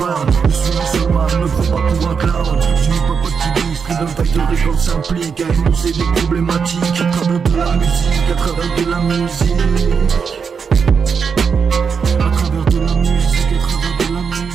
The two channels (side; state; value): left; quieter; 6.1 dB